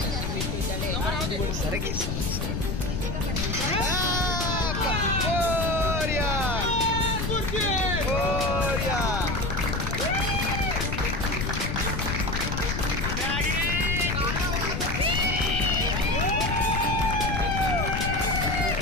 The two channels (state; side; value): noise; left; rumble, 2 dB below the sound